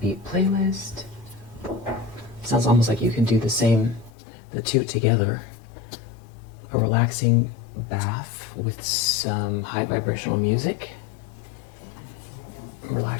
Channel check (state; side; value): drops out; right; at 4.1 s